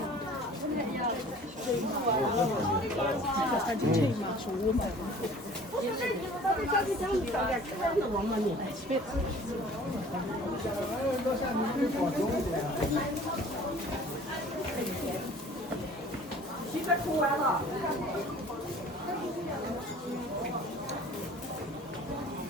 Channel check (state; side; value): normal; both; correlation 0.48